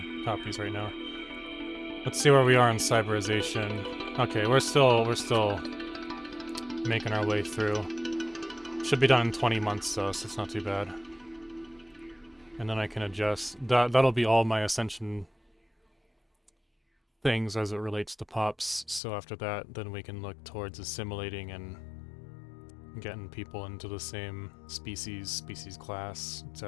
copies right now. Let's see where we are in cyberization. Okay, we're still making our way through. Should be done in 20 months though, so it's not too bad. And then I can adjust. That'll be all my ascension things as it relates to pops. So after that, then we can look towards assimilating and getting people into the same species class,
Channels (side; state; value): right; drops out; at 19.0 s